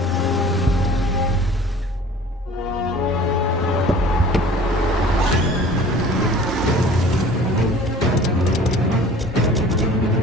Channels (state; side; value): normal; both; correlation 0.47